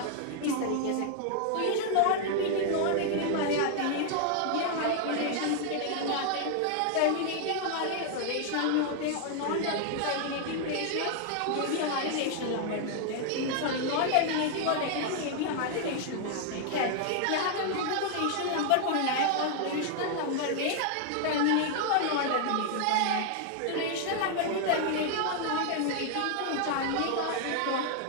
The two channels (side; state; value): both; different; correlation 0.00